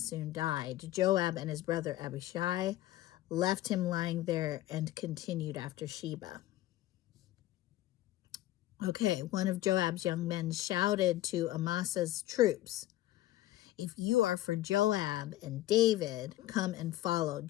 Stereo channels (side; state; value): right; quieter; 15.2 dB